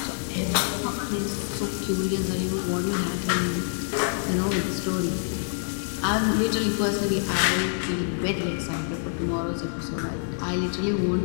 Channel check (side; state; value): right; silent; digital silence